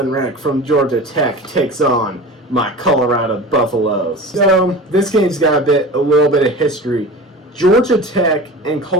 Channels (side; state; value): both; normal; correlation 0.34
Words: Wreck from Georgia Tech takes on my Colorado Buffaloes. So this game's got a little bit of history. Georgia Tech and